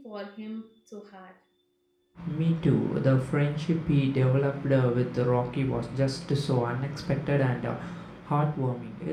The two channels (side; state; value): both; identical; correlation 1.00